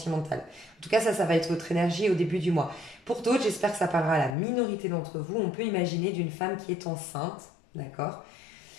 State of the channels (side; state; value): right; drops out; at 4.4 s